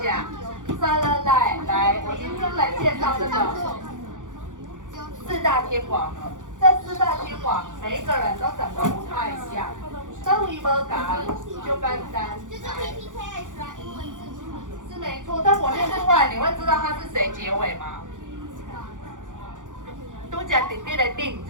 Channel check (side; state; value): left; late; 0.87 ms